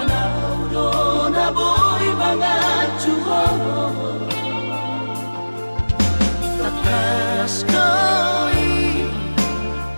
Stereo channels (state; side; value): inverted; both; correlation -1.00